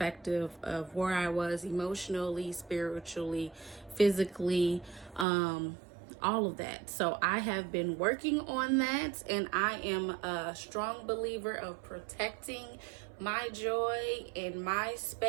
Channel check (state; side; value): drops out; left; at 5.2 s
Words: of where I was emotionally, spiritually, physically, all of that. So I have been working on that, and I am a strong believer of protecting my joy and my